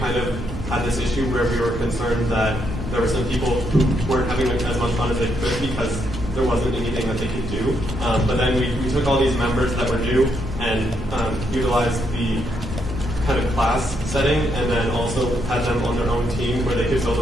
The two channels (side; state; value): both; normal; correlation 0.77